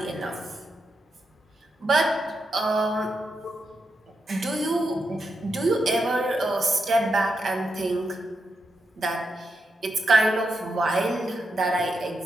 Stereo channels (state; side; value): normal; both; correlation 0.84